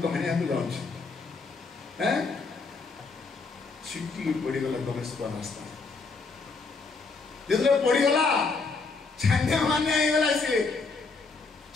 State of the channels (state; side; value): quieter; right; 4.2 dB